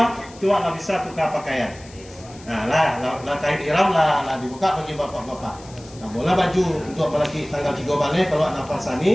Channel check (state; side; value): noise; left; hiss, 22 dB below the sound